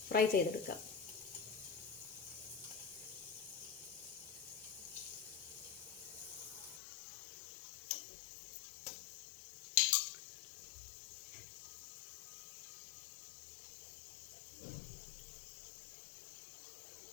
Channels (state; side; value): drops out; right; at 6.8 s